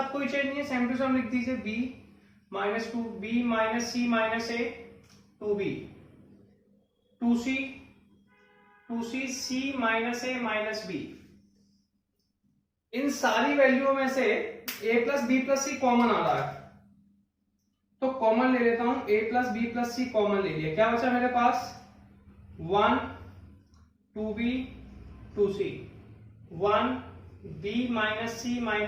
कोई चेंज नहीं है, सेम टू सेम लिख दीजिए, B minus 2B minus C minus A 2B 2C 2C C minus A minus B। इन सारी वैल्यूओं में से A plus B plus C common आ रहा है, तो कॉमन ले लेता हूं, A plus B plus C common ले लिया, क्या बचा मेरे पास 1 2B 2C 1B minus C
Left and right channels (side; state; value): both; identical; correlation 1.00